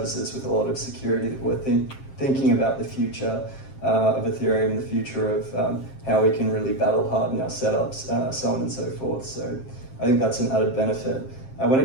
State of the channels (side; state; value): right; late; 7.5 ms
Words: with a lot of security, that we're thinking about the future of Ethereum, the future of how we can really battle harden our setups, so on and so forth. So I think that's an added benefit. When